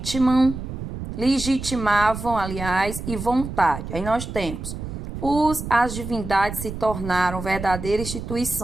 legitimavam, aliás, e vontade. Aí nós temos as divindades se tornaram verdadeiras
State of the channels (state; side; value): noise; right; rumble, 8 dB below the sound